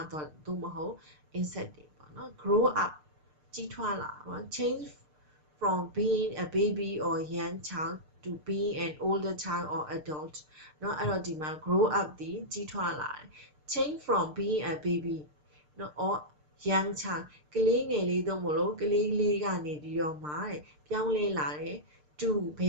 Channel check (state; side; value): late; left; 6.6 ms